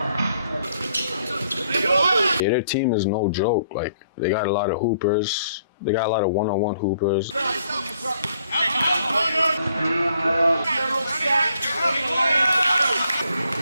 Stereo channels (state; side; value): inverted; both; correlation -0.68